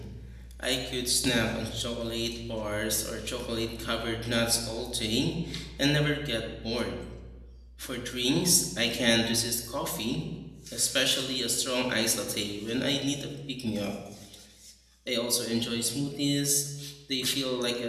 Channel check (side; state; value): both; identical; correlation 1.00